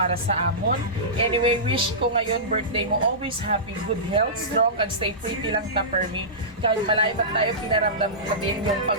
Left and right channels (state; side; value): normal; both; correlation -0.19